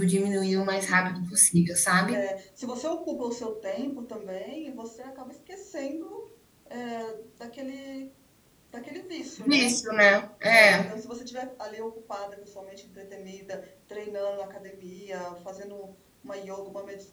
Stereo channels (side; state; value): both; identical; correlation 1.00